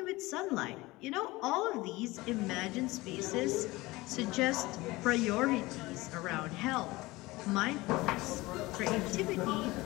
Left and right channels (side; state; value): right; quieter; 20.7 dB